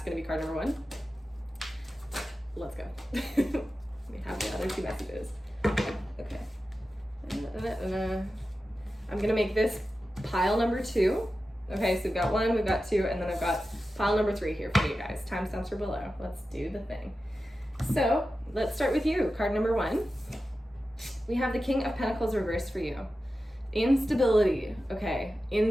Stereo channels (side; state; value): both; normal; correlation 0.93